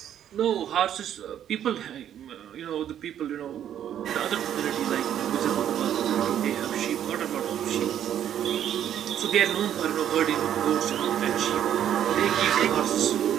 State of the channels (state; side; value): quieter; left; 10.2 dB